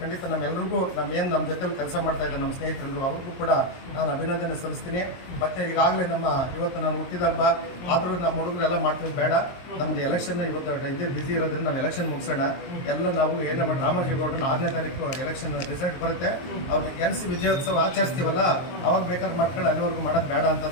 ಖಂಡಿತ ನಮ್ಮೆಲ್ಲರಿಗೂ ನಮ್ಮ ಜೊತೆಲಿ ಕೆಲಸ ಮಾಡ್ತಾ ಇದ್ದಾರೆ ನಮ್ಮ ಸ್ನೇಹಿತರೆಲ್ಲರೂ ಅವ್ರಿಗೂ ಕೂಡ ನಾನು ಅಭಿನಂದನೆ ಸಲ್ಲಿಸ್ತೀನಿ. ಮತ್ತೆ ಈಗಾಗಲೇ ಇವತ್ತು ನಾನು ಹುಟ್ಟಿದ ಹಬ್ಬ ಆದರೂ ನಮ್ಮ ಹುಡುಗರೆಲ್ಲ ಮಾಡ್ತೀವಿ, ಬೇಡ ನಮ್ದು ಎಲೆಕ್ಷನ್ ಇವತ್ತು ಇದೇ ಬಿಸಿ ಇರೋದ್ರಿಂದ ನಾವು ಎಲೆಕ್ಷನ್ ಮುಗಿಸೋಣ. ಎಲ್ಲ ನಾವು ಏನೇ ಮಾಡಿ ರಾಮೋಜಿಗೌಡನ 6ನೇ ತಾರೀಕು ಎಲೆಕ್ಷನ್ ರಿಸಲ್ಟ್ ಬರುತ್ತೆ, ಅವ್ರನ್ನ ಗೆಲ್ಲಿಸಿ ವಿಜಯೋತ್ಸವ ಆಚರಿಸ್ತೀವಲ್ಲ ಅವಾಗ ಬೇಕಾದ್ರೆ ಮಾಡ್ಕೊಂಡು ಅಲ್ಲಿವರೆಗೂ ಮಾಡೋದು ಬೇಡ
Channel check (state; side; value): late; right; 22 ms